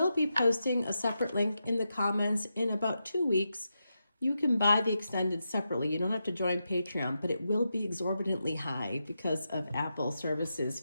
be posting a separate link in the comments in about 2 weeks. You can buy the extended separately. You don't have to join Patreon, but it will be exorbitantly high because of Apple services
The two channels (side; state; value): both; inverted; correlation -0.88